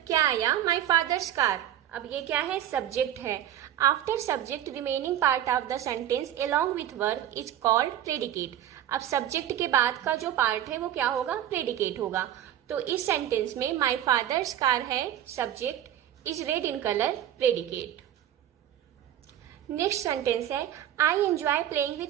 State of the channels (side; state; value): left; quieter; 11.5 dB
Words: क्या आया? माई फादर्स कार. अब ये क्या है? सब्जेक्ट है. After subject remaining part of the sentence along with verb is called predicate. अब सब्जेक्ट के बाद का जो पार्ट है वो क्या होगा? प्रेडिकेट होगा. तो इस सेंटेंस में माई फादर्स कार है subject, is red in colour predicate. Next sentence है I enjoy playing